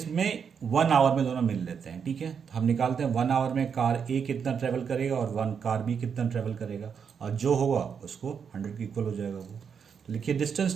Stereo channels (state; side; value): quieter; left; 6.8 dB